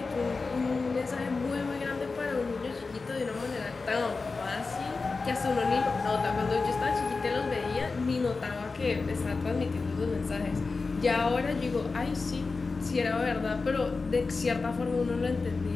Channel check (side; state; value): right; quieter; 4.1 dB